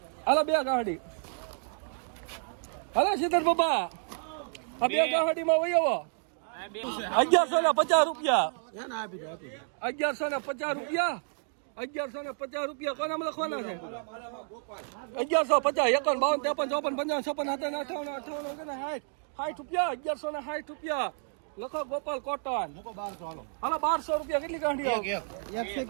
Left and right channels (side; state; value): left; silent; 58 dB below the other